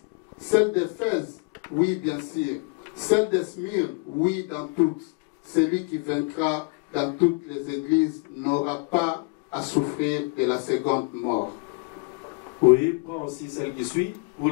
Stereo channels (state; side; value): quieter; right; 30.6 dB